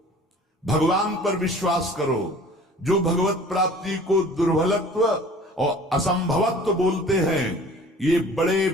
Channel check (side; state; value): both; normal; correlation 0.47